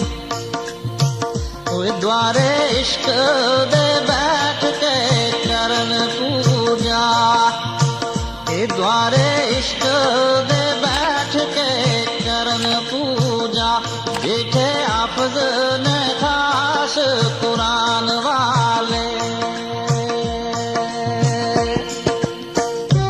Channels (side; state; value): both; identical; correlation 1.00